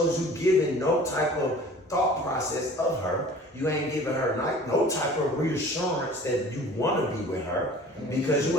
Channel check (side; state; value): both; normal; correlation 0.46